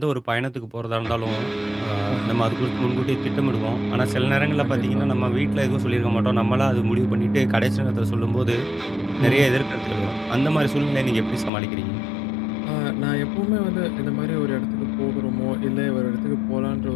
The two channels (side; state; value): right; drops out; at 11.5 s